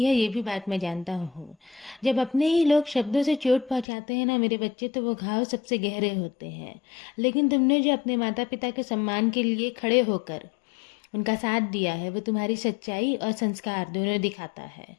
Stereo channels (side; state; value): right; drops out; at 3.9 s